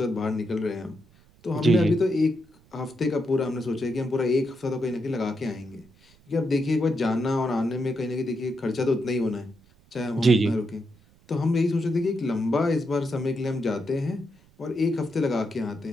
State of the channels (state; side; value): noise; right; rumble, 29 dB below the sound